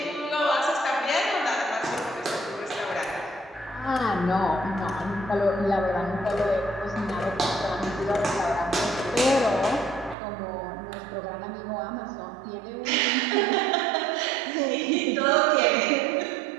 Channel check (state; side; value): drops out; left; at 10.2 s